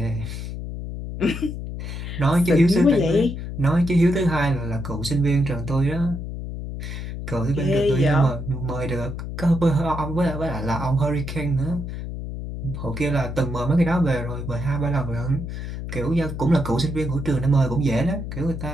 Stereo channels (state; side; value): noise; left; hum, 7 dB below the sound